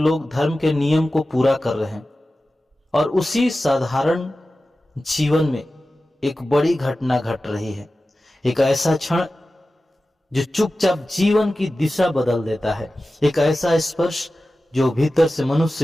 लोग धर्म के नियम को पूरा कर रहे हैं, और उसी साधारण जीवन में एक बड़ी घटना घट रही है। एक ऐसा क्षण जो चुपचाप जीवन की दिशा बदल देता है, एक ऐसा स्पर्श जो भीतर से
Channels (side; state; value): both; normal; correlation 0.95